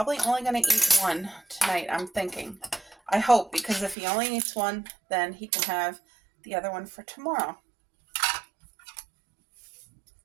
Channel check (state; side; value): drops out; left; at 4.0 s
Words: only going to eat 1 tonight, I'm thinking. I hope, because if he only eats 1, then he can have the other one for tomorrow.